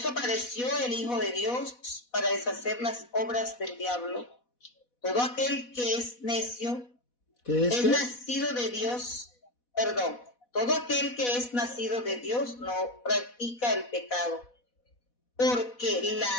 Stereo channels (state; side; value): late; right; 4.1 ms